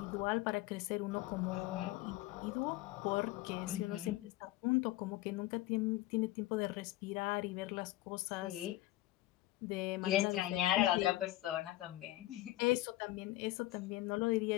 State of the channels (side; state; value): right; quieter; 16.7 dB